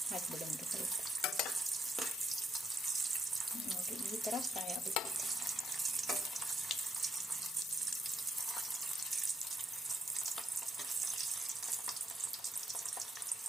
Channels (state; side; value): normal; both; correlation 0.77